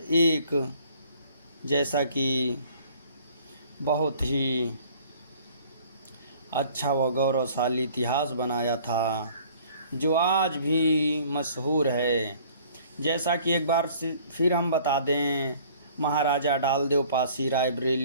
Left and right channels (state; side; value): inverted; both; correlation -0.54